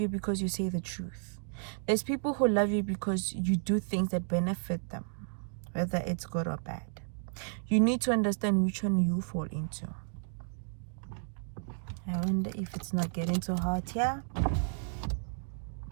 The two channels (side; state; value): left; silent; digital silence